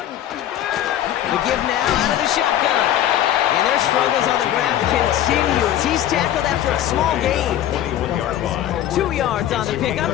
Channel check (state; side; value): quieter; right; 11.8 dB